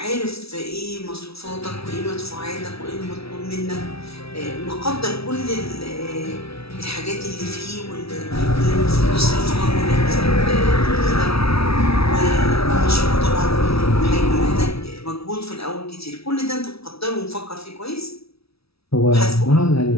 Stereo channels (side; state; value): right; late; 0.77 ms